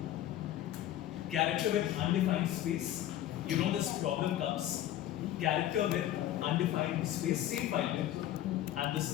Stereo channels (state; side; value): quieter; right; 12.6 dB